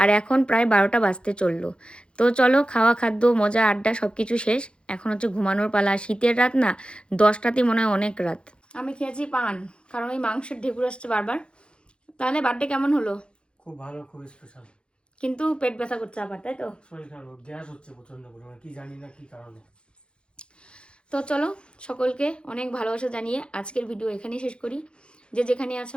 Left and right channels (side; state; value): right; late; 0.055 ms